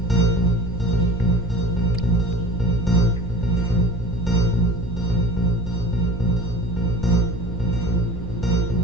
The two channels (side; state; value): both; normal; correlation 0.40